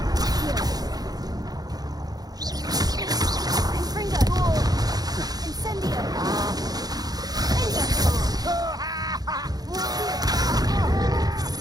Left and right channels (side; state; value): left; late; 0.19 ms